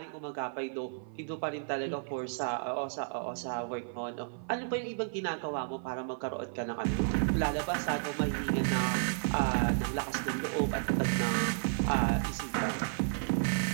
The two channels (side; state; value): left; silent; 56 dB below the other